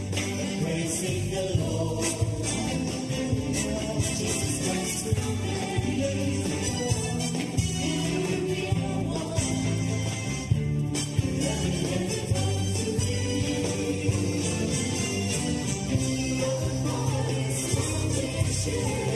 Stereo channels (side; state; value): both; identical; correlation 1.00